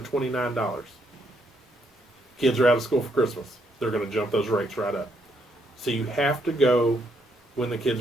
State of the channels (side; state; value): both; normal; correlation 0.74